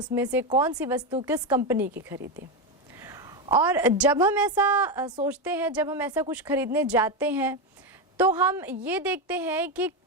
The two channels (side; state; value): both; normal; correlation 0.11